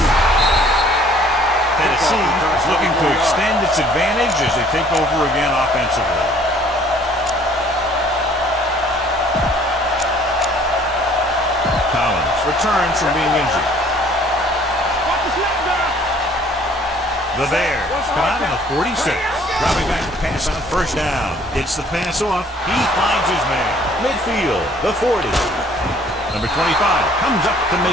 Tennessee is looking to extend its advantage as they take over again offensively. Collins returns from being injured. The Bears come out on the 46. Dropping back to pass on first down. Gets the pass off. He finds his man. Midfield, the 40. Number 25 comes up to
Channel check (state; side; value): normal; both; correlation 0.57